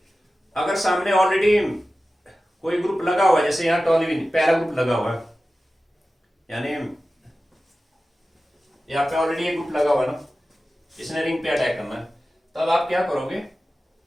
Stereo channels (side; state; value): both; normal; correlation 0.95